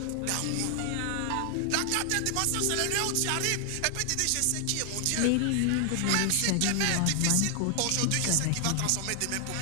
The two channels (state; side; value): different; both; correlation 0.00